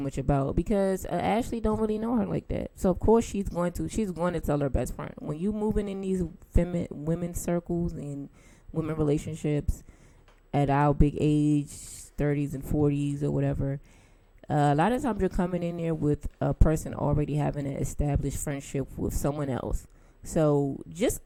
about, because Ashley don't really know her like that. So of course she's going to tell her best friend. When you moving in these women's circles and women relationships at our big age, 30s and 40s or whatever, a lot of times you're coming in there with a person already having an established friendship with someone else. So just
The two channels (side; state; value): both; identical; correlation 1.00